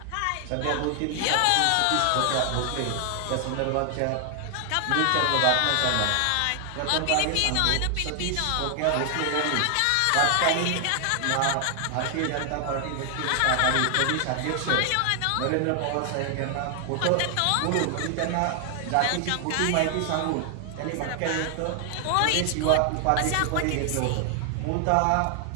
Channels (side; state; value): both; different; correlation 0.00